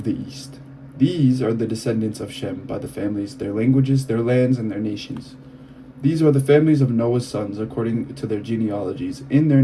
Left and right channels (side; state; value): both; identical; correlation 1.00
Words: the east. These are the descendants of Shem by the families, their languages, their lands, and their nations. These are the families of Noah's sons according to their genealogies in their